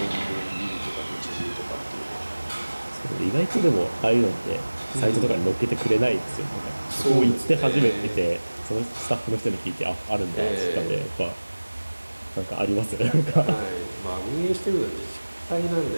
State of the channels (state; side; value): inverted; both; correlation -1.00